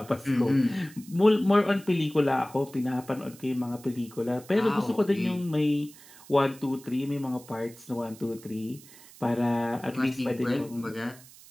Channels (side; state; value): right; noise; hiss, 21 dB below the sound